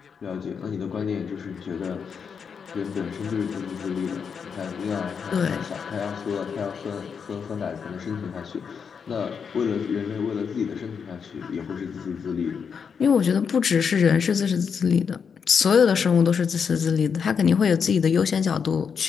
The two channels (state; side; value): quieter; right; 6.4 dB